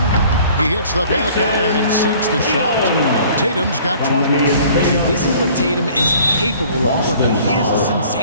He hits the back iron and sinks the shot. Tatum's got 20. This is what Tatum is capable of. Look, he is a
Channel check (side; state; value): both; inverted; correlation -0.52